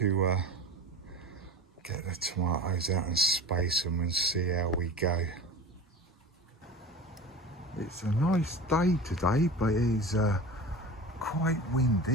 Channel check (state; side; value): normal; both; correlation 0.33